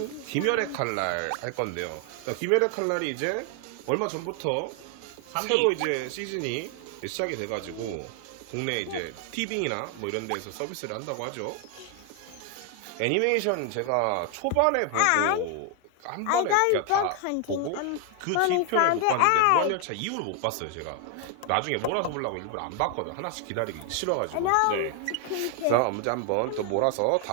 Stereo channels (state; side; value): different; both; correlation 0.00